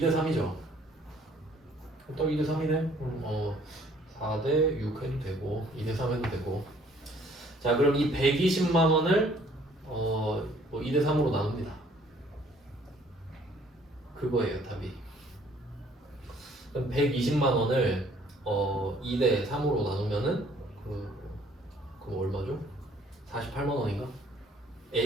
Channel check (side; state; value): both; normal; correlation 0.60